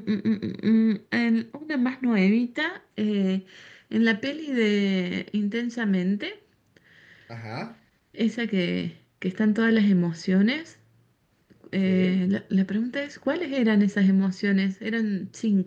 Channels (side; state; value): both; identical; correlation 1.00